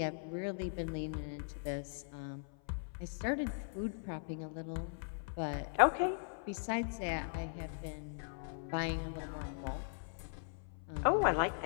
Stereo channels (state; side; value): silent; right; 52 dB below the other